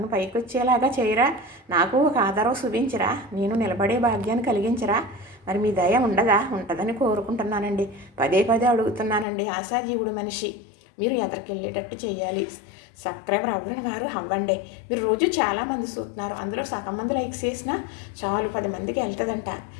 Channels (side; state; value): right; drops out; at 9.2 s